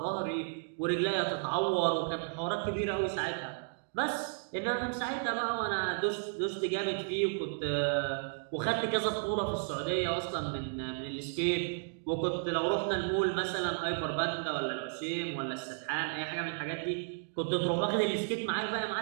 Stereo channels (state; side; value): silent; left; digital silence